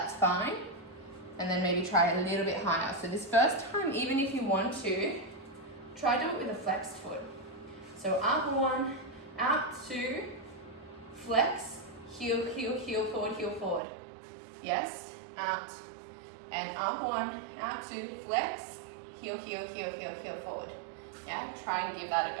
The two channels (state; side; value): drops out; left; at 13.8 s